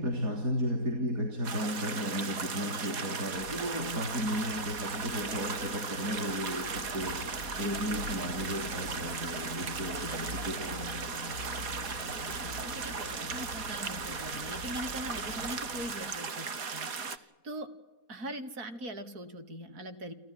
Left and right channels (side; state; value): left; late; 4.2 ms